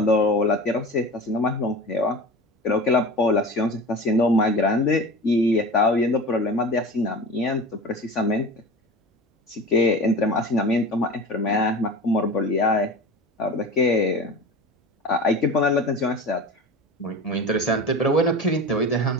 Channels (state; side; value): normal; both; correlation 0.33